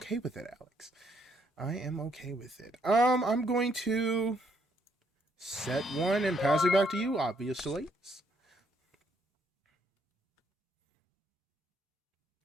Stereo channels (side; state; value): both; normal; correlation 0.71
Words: with it, Alex. I am okay with it. I'm going to set one and pass it back to you, obviously.